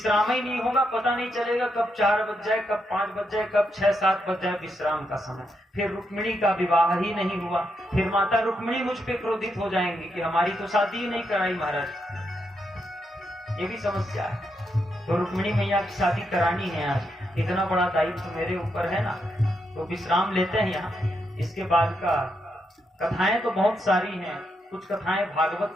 ही नहीं होगा, पता नहीं चलेगा कब 4 बज जाए, कब 5 बज जाए, कब 6, 7 बज जाए विश्राम का समय। फिर रुक्मिणी का विवाह ही नहीं हुआ। फिर माता रुक्मिणी मुझ पे क्रोधित हो जाएंगी कि हमारी तो शादी ही नहीं कराई महाराज। ये भी समस्या है। तो रुक्मिणी मैया की शादी करानी है आज, इतना बड़ा दायित्व तो मेरे ऊपर है ना। तो विश्राम लेते हैं यहाँ। इसके बाद का कथाएं तो बहुत सारी हैं। कुछ कथाएं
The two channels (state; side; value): normal; both; correlation 0.81